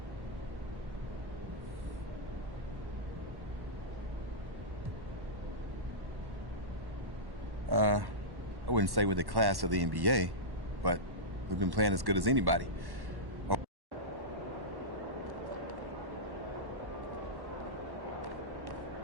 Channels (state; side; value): late; left; 1.1 ms